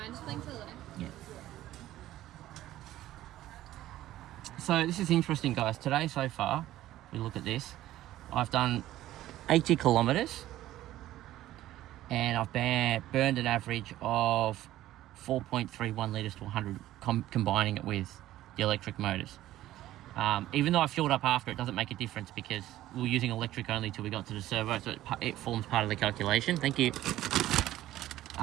just playing to the left? Yeah. So this is interesting, guys. Today so far, we look at this. I've done 80 kilometers and I've burned an average of 4.31 litres to 100, combining it with the electric motors. Even though I fueled up after, it doesn't make a difference because we were using electric only till we got to the servo, so it forms part of the calculation. Thank you.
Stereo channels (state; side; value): quieter; left; 14.4 dB